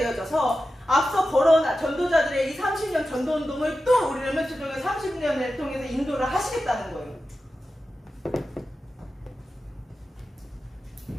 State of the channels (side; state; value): both; normal; correlation 0.92